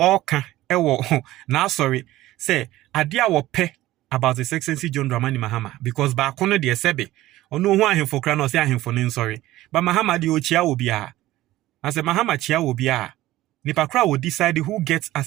ewo na sorry say adia wo pe about His Excellency John Dramani Mahama because ba kono de sebe ono hu ahemfo kra no say ahemfo ne sorry. But Mahama de ochia obi a. As a Mahama chia obi a. Nipakra will decide who gets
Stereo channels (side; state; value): left; quieter; 16.1 dB